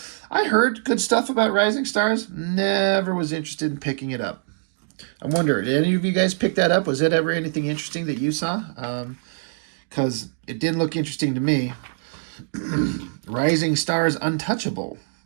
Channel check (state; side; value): silent; left; digital silence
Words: I heard good stuff about Rising Stars. Never was interested in picking it up. I wonder, did any of you guys pick that up? Was it ever anything interesting that you saw? Because it didn't look interesting to me. Rising Stars Untouchable.